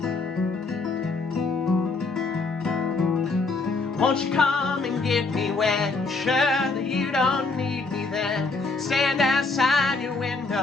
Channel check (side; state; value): right; quieter; 3.8 dB